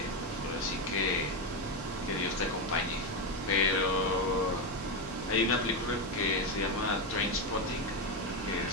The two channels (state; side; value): normal; both; correlation 0.10